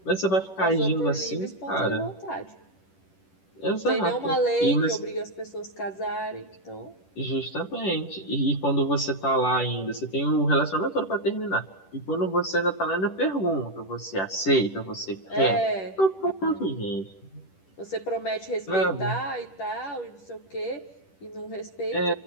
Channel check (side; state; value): right; late; 10 ms